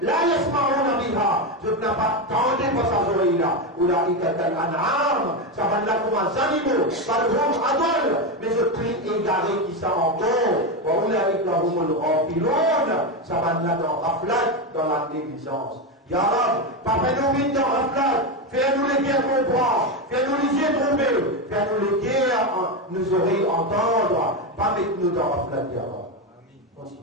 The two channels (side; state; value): both; normal; correlation 0.12